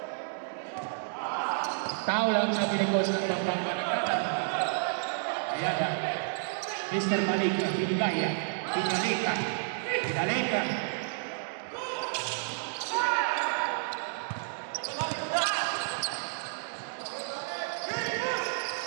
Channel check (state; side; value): silent; left; digital silence